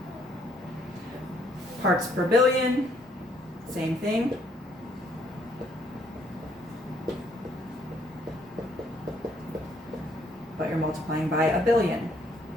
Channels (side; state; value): both; normal; correlation 0.67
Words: Parts per billion, same thing. But you're multiplying by 1,000,000,000.